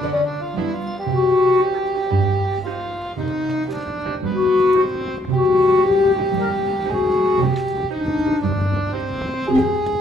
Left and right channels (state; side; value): normal; both; correlation 0.71